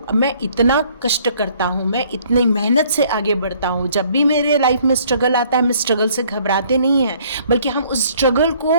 मैं इतना कष्ट करता हूँ, मैं इतनी मेहनत से आगे बढ़ता हूँ, जब भी मेरे लाइफ में स्ट्रगल आता है, मैं स्ट्रगल से घबराते नहीं हैं, बल्कि हम उस स्ट्रगल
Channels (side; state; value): both; inverted; correlation -0.60